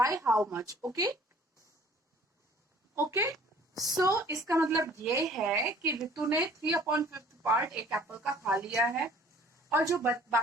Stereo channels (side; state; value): both; normal; correlation 0.53